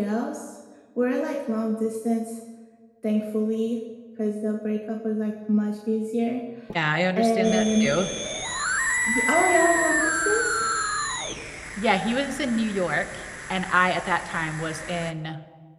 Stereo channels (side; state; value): both; identical; correlation 1.00